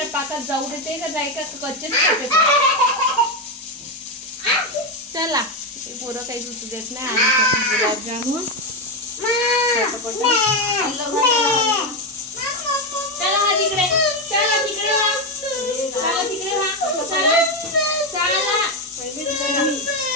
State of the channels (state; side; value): normal; both; correlation 0.09